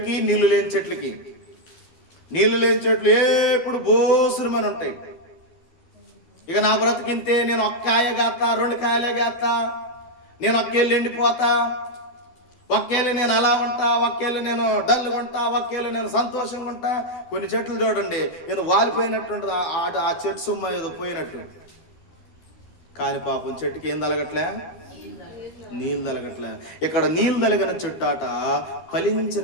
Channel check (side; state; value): right; late; 12 ms